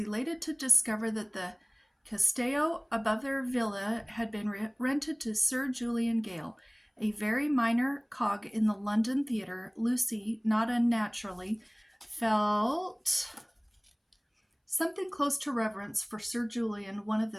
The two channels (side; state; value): both; identical; correlation 1.00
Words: to discover that the Castello above their villa had been rented to Sir Julian Gale, a very minor cog in the London theatre. Lucy, not unnaturally, felt something close to reverence for Sir Julian, one of